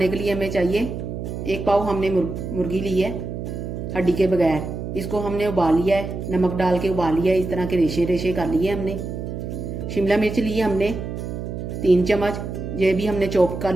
के लिए हमें चाहिए 1 पाव हमने मुर्गी ली है हड्डी के बगैर। इसको हमने उबाल लिया है, नमक डाल के उबाल लिया है। इस तरह के रेशे रेशे कर लिए हमने। शिमला मिर्च ली है हमने 3 चम्मच, ये भी हमने चॉप कर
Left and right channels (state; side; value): noise; right; hum, 6 dB below the sound